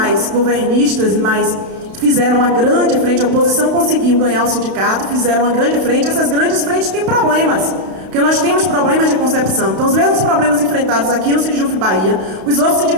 governistas, mas fizeram uma grande frente, a oposição conseguiu ganhar o sindicato, fizeram uma grande frente. Essas grandes frentes têm problemas, porque nós temos problemas de concepção. Então, os mesmos problemas enfrentados aqui no Sindjuf Bahia, os outros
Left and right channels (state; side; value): late; left; 32 ms